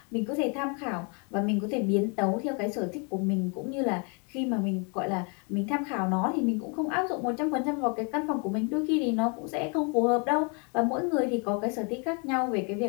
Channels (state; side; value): quieter; right; 35.7 dB